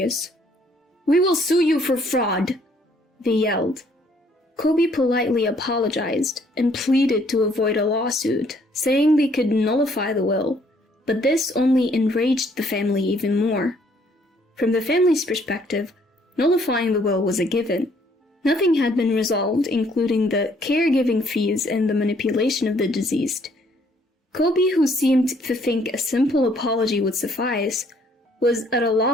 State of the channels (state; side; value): normal; both; correlation 0.64